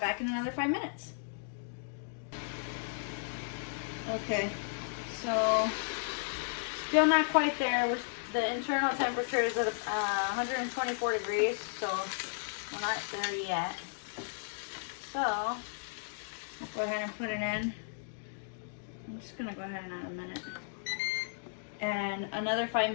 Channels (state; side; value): silent; right; digital silence